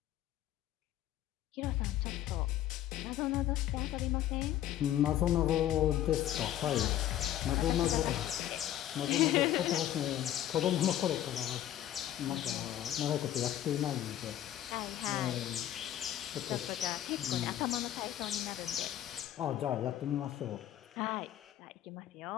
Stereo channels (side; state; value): right; quieter; 12.2 dB